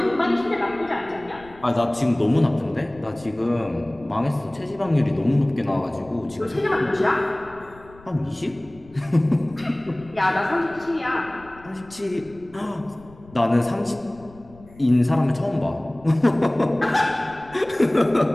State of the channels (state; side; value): noise; left; rumble, 23 dB below the sound